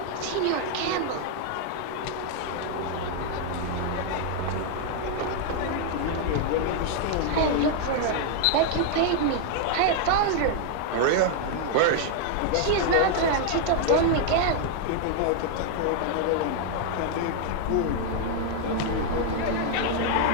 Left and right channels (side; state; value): both; different; correlation 0.00